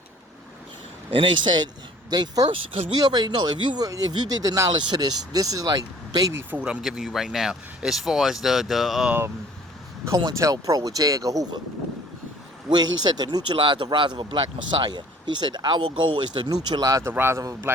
And they said, they first, because we already know, if you did the knowledge to this is like baby food I'm giving you right now, as far as the COINTELPRO with J. Edgar Hoover, where he said to neutralize the rise of a black messiah. He said, our goal is to neutralize the rise of a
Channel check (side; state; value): both; normal; correlation 0.52